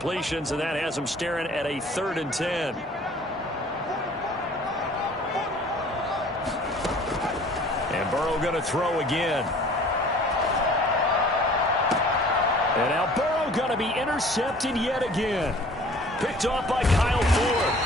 and that has them staring at a third and 10. And Burrow going to throw again. And now Burrow going to be intercepted yet again. Picked off by Kyle Ford.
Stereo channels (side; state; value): both; normal; correlation 0.50